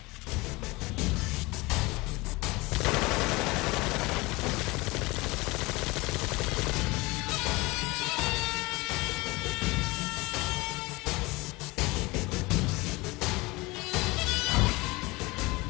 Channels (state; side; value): quieter; right; 23.1 dB